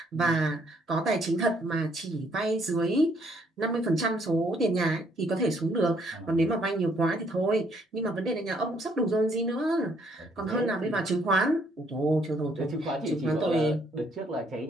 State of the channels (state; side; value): normal; both; correlation 0.68